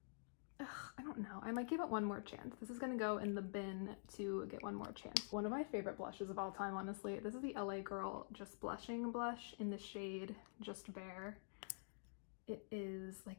Ugh, I don't know. I might give it one more chance. This is gonna go in the bin to get one more chance. One of my favorite blushes of all time, honestly. This is the LA Girl Just Blushing blush in the shade Just Bare. It is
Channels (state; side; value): silent; right; digital silence